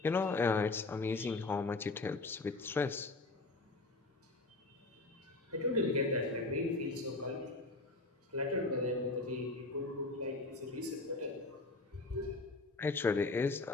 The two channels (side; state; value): right; quieter; 3.3 dB